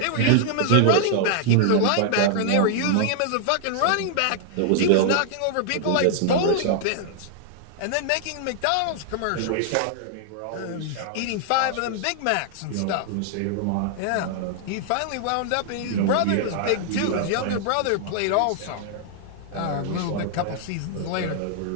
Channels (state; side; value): different; both; correlation -0.01